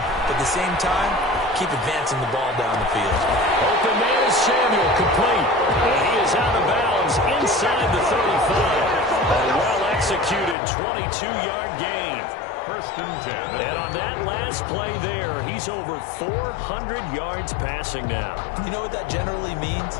but at the same time, keep advancing the ball down the field. Open man is Samuel, complete. And he is out of bounds inside the 35. A well-executed 22-yard gain. 1st and 10. And on that last play there, he's over 400 yards passing now. You know what that generally means?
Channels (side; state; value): right; drops out; at 10.6 s